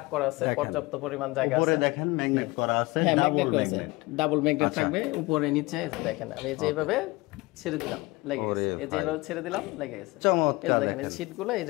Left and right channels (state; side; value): quieter; right; 22.7 dB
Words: করা আছে, পর্যাপ্ত পরিমাণ জায়গা আছে, উপরে দেখেন ম্যাগনেট করা আছে, ডাবল ম্যাগনেট থাকবে উপরে নিচে। দেখেন আমি যেভাবে ছেড়ে দিলাম লেগে গেছে, এই যেভাবে ছেড়ে দিলাম লেগে গেছে, চমৎকার। দেখেন এই শীটগুলো